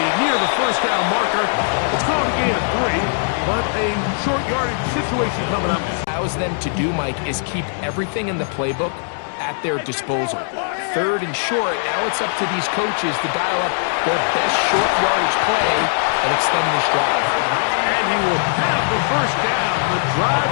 near the first down marker. It's called a gain of 3, but a short yardage situation coming up. Allows them to do, Mike, is keep everything in the playbook at their disposal. 3rd and short, now it's up to these coaches to dial up their best short yardage play and extend this drive. And he will have the first down. The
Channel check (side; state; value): right; silent; digital silence